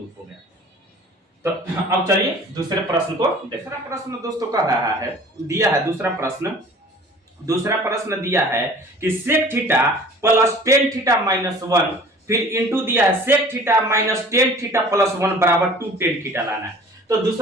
हो गया। तो अब चलिए दूसरे प्रश्न को। दूसरा प्रश्न दोस्तों कह रहा है दिया है दूसरा प्रश्न दिया है कि sec theta plus tan theta minus 1 फिर इंटू दिया है sec theta minus tan theta plus 1 बराबर 2 tan थीटा लाना है। तो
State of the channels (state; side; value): normal; both; correlation 0.47